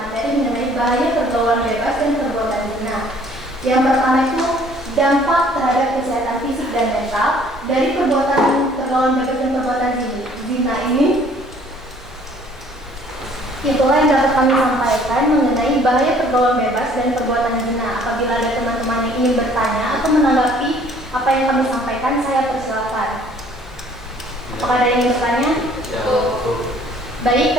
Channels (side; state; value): both; normal; correlation 0.57